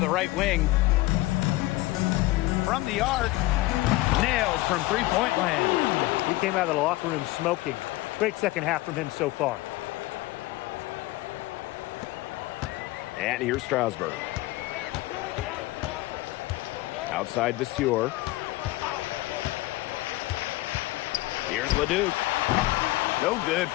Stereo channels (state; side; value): quieter; right; 18.7 dB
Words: right wing. From the arc. Nailed from three-point land. He came out of the locker room smoking. Great second half from him so far. And here's Strasburg. Outside Vasseur. Here's Leduc. No good